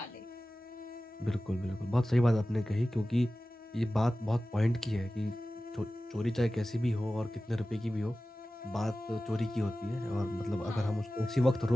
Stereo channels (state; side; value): normal; both; correlation 0.95